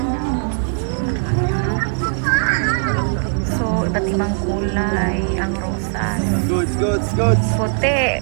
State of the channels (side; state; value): left; silent; 58 dB below the other